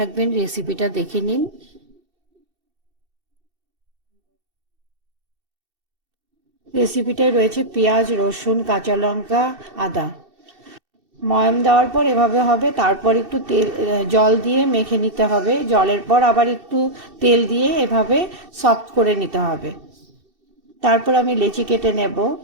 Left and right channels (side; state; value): left; late; 2.7 ms